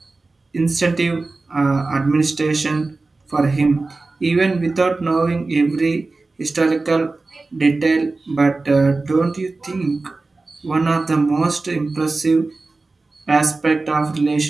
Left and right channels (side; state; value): left; quieter; 3.5 dB